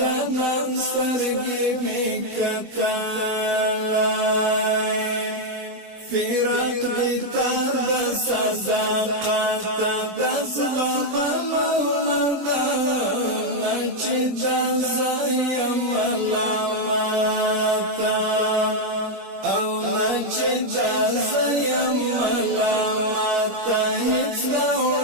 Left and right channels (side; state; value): left; late; 21 ms